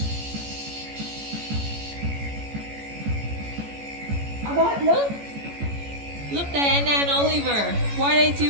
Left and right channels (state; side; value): late; left; 14 ms